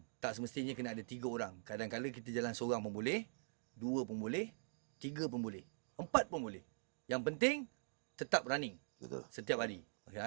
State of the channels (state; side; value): silent; left; digital silence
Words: Tak semestinya kena ada 3 orang. Kadang-kadang kita jalan seorang pun boleh, 2 pun boleh, 3 pun boleh, 4 pun boleh. Yang penting tetap running. Betul. Setiap hari.